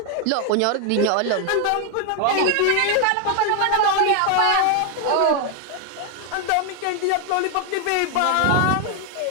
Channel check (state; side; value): different; both; correlation 0.00